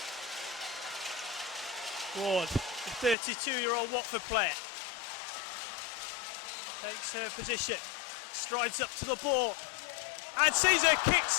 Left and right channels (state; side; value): drops out; right; at 3.2 s